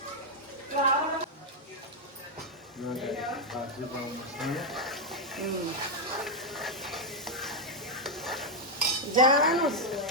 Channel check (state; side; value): normal; both; correlation 0.00